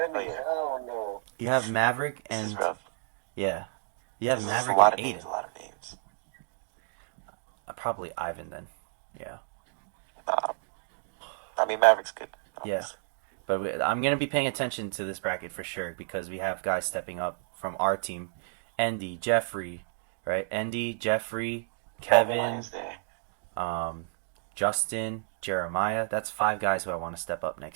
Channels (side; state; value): left; silent; digital silence